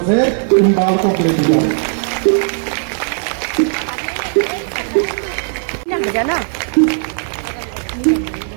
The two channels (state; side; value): silent; left; digital silence